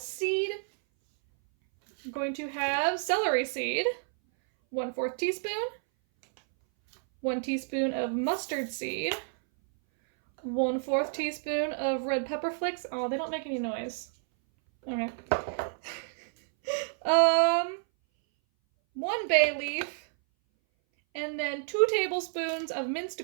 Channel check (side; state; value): left; silent; 58 dB below the other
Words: You're going to have celery seed, 1/4 teaspoon, 1 teaspoon of mustard seed, 1/4 teaspoon of red pepper flakes. Oh, they don't make any noise. Okay. 1 bay leaf, and then 2 tablespoons of